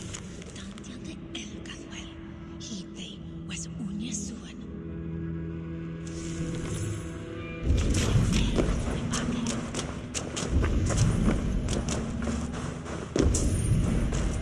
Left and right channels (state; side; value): identical; both; correlation 1.00